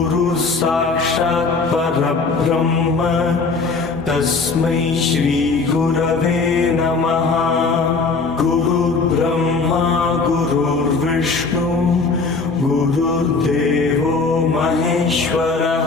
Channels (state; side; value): quieter; right; 4.2 dB